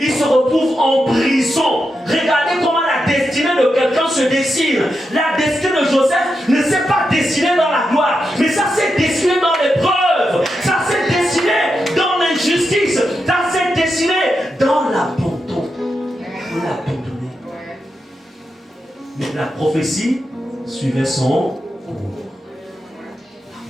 se retrouve en prison. Regardez comment la destinée de quelqu'un se dessine. La destinée de Joseph ne s'est pas dessinée dans la gloire, mais ça s'est dessiné dans l'épreuve. Ça s'est dessiné dans l'injustice. Ça s'est dessiné dans l'abandon. On l'a abandonné. Mais la prophétie suivait son cours.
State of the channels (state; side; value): normal; both; correlation 0.87